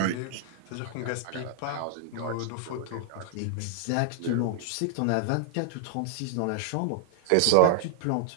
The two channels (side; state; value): both; different; correlation -0.01